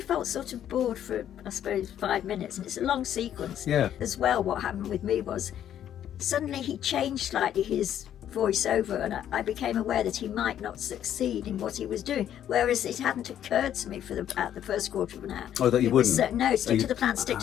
sort of bored for, I suppose, 5 minutes, and it's a long sequence. As well, what happened with me was suddenly he changed slightly his voiceover, and I became aware that he might not succeed in what he was doing, whereas it hadn't occurred to me at the first quarter of an hour. Oh, that you wouldn't? No, stick to the plan, stick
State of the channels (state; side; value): quieter; right; 10.5 dB